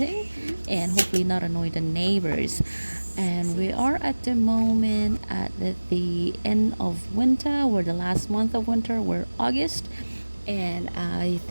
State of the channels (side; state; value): both; inverted; correlation -1.00